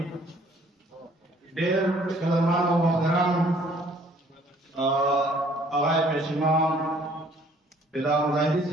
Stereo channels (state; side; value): normal; both; correlation 0.59